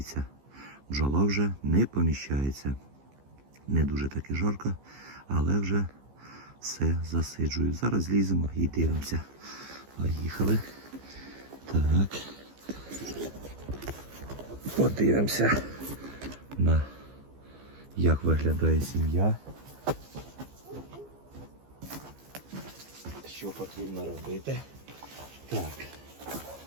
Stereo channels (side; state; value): left; late; 15 ms